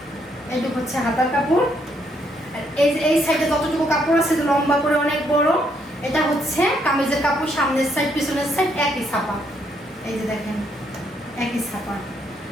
এইটুকু হচ্ছে হাতার কাপড়। আর এই যে এই সাইডে যতটুকু কাপড় আছে লম্বা করে অনেক বড়, এটা হচ্ছে কামিজের কাপড়। সামনের সাইড পিছনের সাইড একই ছাপা, এই যে দেখেন একই ছাপা।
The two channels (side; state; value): both; normal; correlation 0.73